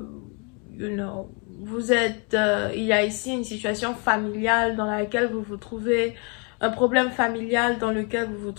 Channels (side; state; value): right; quieter; 34.9 dB